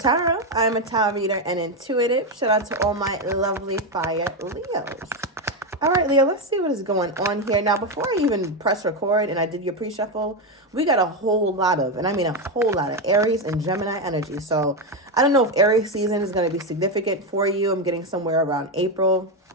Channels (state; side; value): normal; both; correlation 0.09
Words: I'm a tarot reader and intuitive. Shout out to all my lovely fire Leos. All right, Leo, let's see what is going on here. Now, before I even press record and I did your pre-shuffle, we got a whole lot of, and I mean a whole lot of Aries and Gemini energy. So I don't know if Aries season is going to be significant for you. I'm getting somewhere around April.